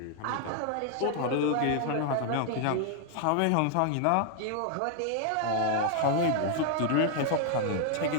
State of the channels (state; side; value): different; both; correlation 0.00